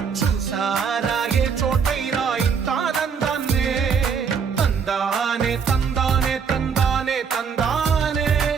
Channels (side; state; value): left; quieter; 6.4 dB